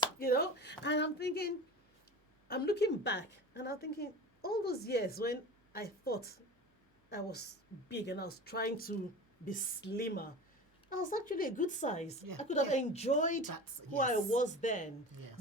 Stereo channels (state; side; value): normal; both; correlation 0.33